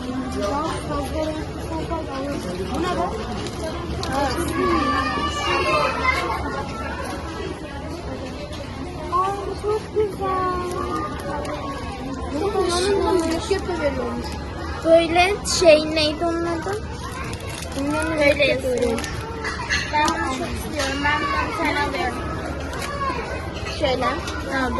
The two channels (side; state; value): both; identical; correlation 1.00